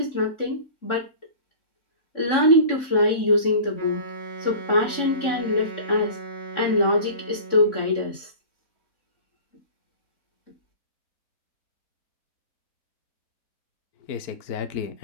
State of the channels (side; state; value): right; late; 3.6 ms